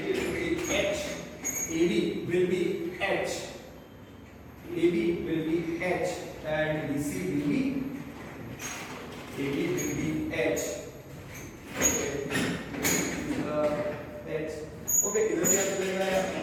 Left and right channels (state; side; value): identical; both; correlation 1.00